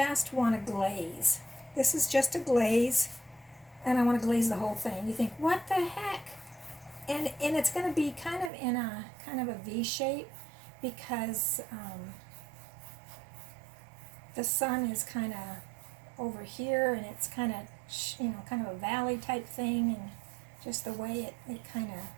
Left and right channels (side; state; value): left; drops out; at 8.5 s